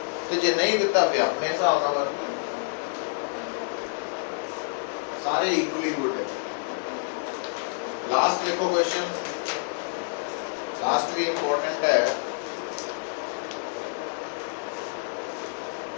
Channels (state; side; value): silent; right; digital silence